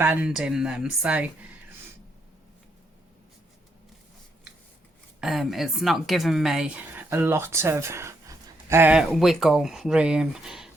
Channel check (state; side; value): normal; both; correlation 0.77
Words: in them, so it's not giving me a lot of wiggle room.